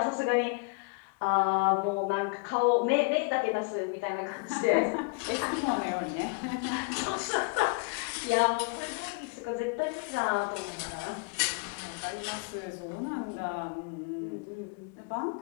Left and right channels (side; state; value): right; quieter; 31.4 dB